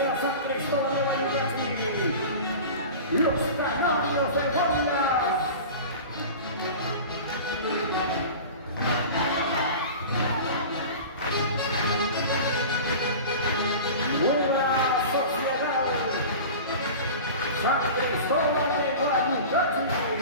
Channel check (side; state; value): both; inverted; correlation -0.35